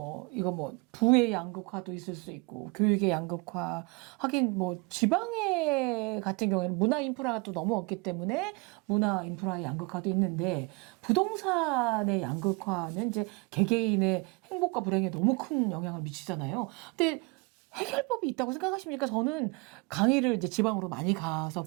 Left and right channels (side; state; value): left; quieter; 28.5 dB